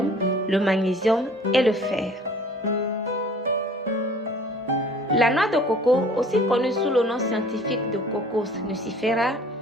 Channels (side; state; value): both; normal; correlation 0.50